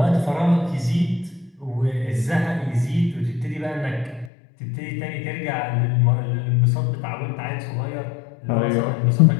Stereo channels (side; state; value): right; drops out; at 4.3 s